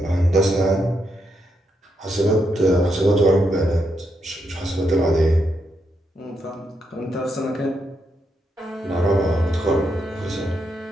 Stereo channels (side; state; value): both; normal; correlation 0.80